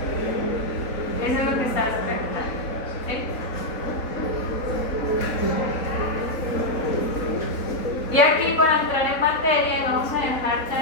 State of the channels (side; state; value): right; late; 4.0 ms